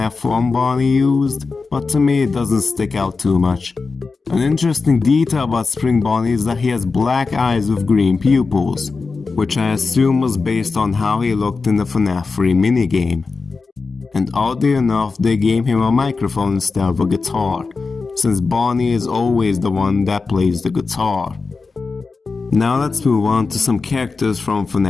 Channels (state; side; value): quieter; right; 4.3 dB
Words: 1 Bonnie used, but to me it doesn't stick out too much. An interesting detail about Spring Bonnie is that he has black eyes with green pupils, which I assume was based on how he looked in the Fnaf 3 minigame. And oddly enough, they gave him a microphone instead of a guitar, since Bonnie is always the one that plays the guitar. Now let's move on to some characters from